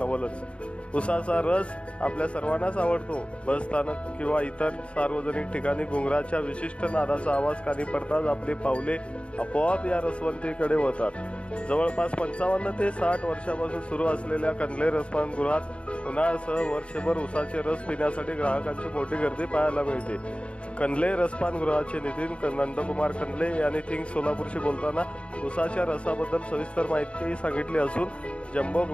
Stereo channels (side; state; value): right; late; 0.060 ms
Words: उसाचा रस आपल्या सर्वांनाच आवडतो। बसस्थानक किंवा इतर सार्वजनिक ठिकाणी घुंगराच्या विशिष्ट नादाचा आवाज कानी पडताच आपली पावले आपोआप या रसवंतीकडे वळतात। जवळपास 55 ते 60 वर्षापासून सुरू असलेल्या कंदले रसपान गृहात उन्हाळ्यासह वर्षभर उसाचे रस पिण्यासाठी ग्राहकांची मोठी गर्दी पाहायला मिळते। कंदले रसपान गृहाचे नितीन नंदकुमार कंदले यांनी किंग सोलापूरशी बोलताना उसाच्या रसाबद्दल सविस्तर माहिती सांगितली असून जम्बो